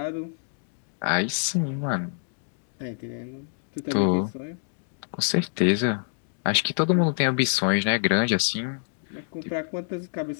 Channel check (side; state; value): right; silent; digital silence